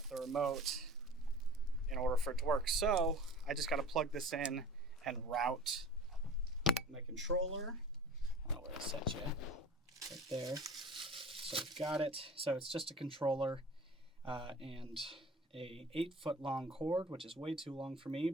the remote in order for it to work. So I just got to plug this in and route my controller. I don't know where to set you. Right there. So we've got it. So it's just a controller and a 8-foot long cord, which is way too long for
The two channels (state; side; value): normal; both; correlation 0.40